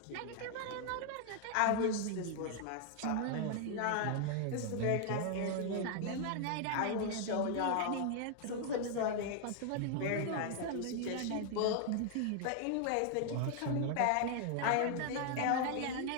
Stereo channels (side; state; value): both; different; correlation 0.00